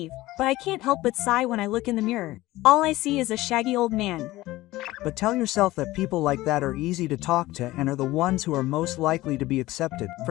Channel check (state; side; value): quieter; right; 17.7 dB